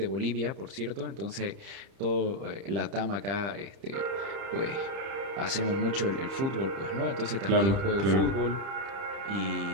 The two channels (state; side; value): late; left; 30 ms